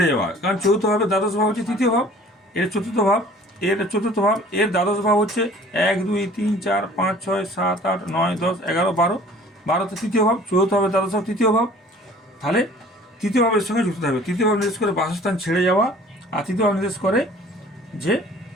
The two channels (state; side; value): normal; both; correlation 0.49